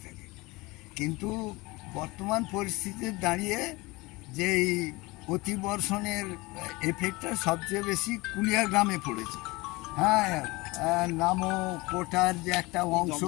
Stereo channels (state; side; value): quieter; right; 23.0 dB